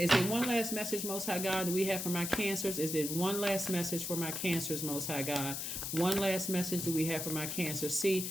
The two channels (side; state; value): left; noise; hiss, 4 dB below the sound